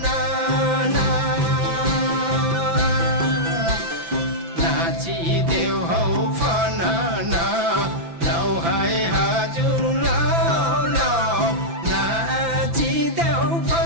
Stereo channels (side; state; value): left; late; 5.9 ms